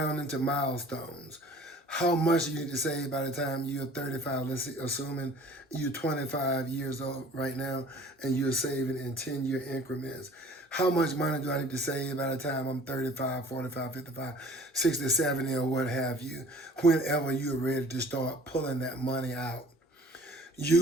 into milestones. how much you need to save by the time you're 35. Let's see, assuming you're 25 years old right now and you're saving in 10-year increments. How much money do I need to save by the time I'm 35, 45, 55, 60, 70, or what have you, whenever you're ready to start pulling that money out?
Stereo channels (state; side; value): normal; both; correlation 0.50